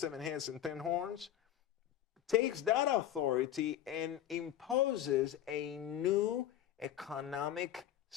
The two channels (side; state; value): right; quieter; 11.4 dB